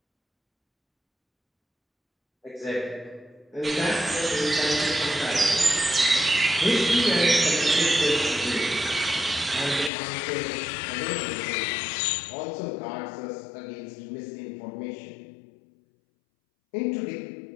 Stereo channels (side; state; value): right; drops out; at 9.9 s